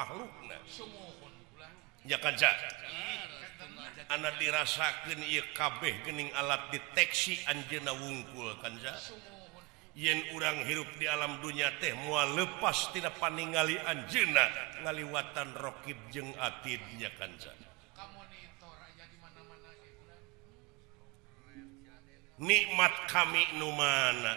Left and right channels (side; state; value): left; quieter; 27.1 dB